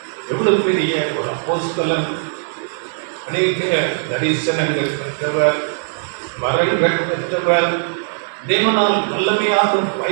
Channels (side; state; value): left; silent; digital silence